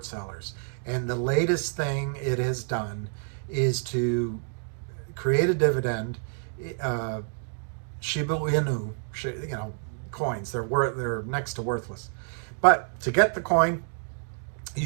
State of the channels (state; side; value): silent; left; digital silence